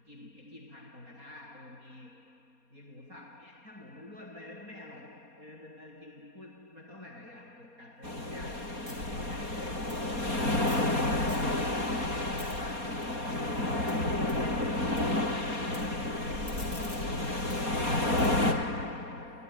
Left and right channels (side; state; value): left; late; 4.2 ms